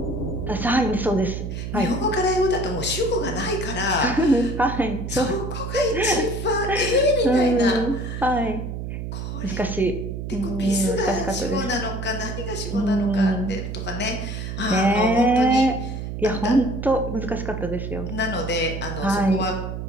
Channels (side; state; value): right; noise; hum, 6 dB below the sound